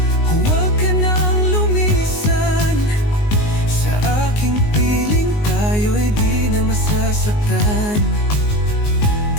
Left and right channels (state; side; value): late; right; 19 ms